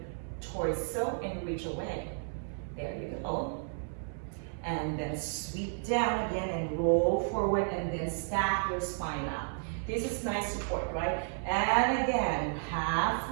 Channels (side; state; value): left; silent; 56 dB below the other